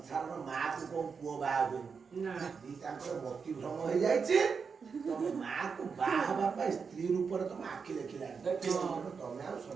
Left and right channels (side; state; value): left; quieter; 5.6 dB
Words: ମାକୁ କୋଉ ପୁଅ ବାହା ହୁଏନି ନା ଦିଟାଙ୍କର ମତି ଭ୍ରମ ହେଇଯାଇଛି ତମ ମାକୁ ବାହା ହେବା ପାଇଁ ସ୍ତ୍ରୀ ରୂପରେ ତମ ଆଖି ଦେଖିଲାଣି ତମେ ଆଉ